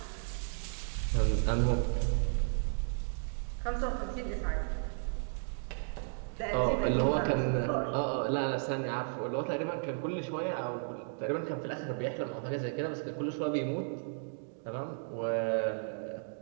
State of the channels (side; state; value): left; silent; digital silence